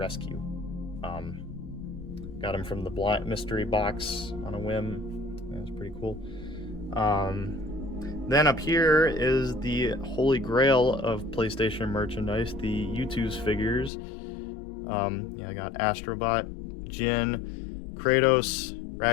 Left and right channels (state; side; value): drops out; right; at 13.9 s